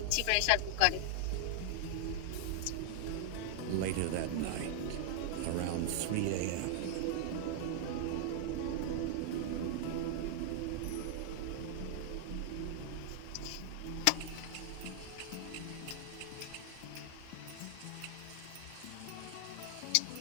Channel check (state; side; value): different; both; correlation 0.00